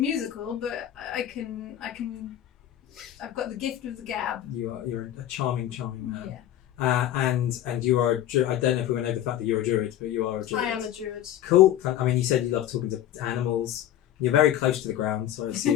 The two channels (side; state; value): right; quieter; 12.0 dB